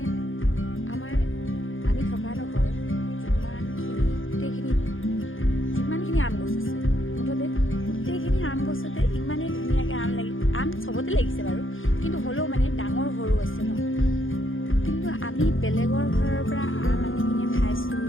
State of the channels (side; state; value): right; late; 0.58 ms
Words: আমি থকা ডোখৰ যিমানখিনি আম গছ আছে, মুঠতে গোটেইখিনি আম গছতে ইমানেই ধুনীয়াকৈ আম চবতে লাগিছে বাৰু, কিন্তু হ'লেও মানে ডাঙৰ সৰু আছে ন। কিন্তু আমি বেলেগৰ ঘৰৰ পৰা আম আনি কিনে খাইছোঁ,